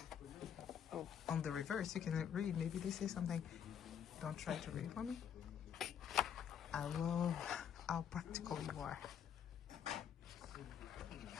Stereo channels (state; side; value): quieter; right; 8.5 dB